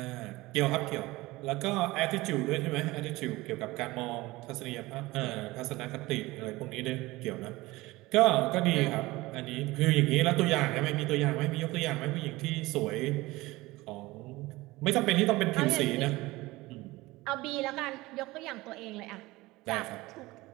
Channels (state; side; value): quieter; left; 20.1 dB